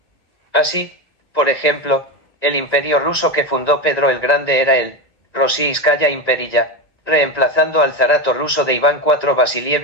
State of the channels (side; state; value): right; late; 1.9 ms